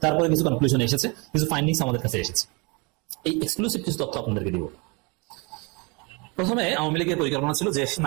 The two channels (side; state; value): left; quieter; 29.6 dB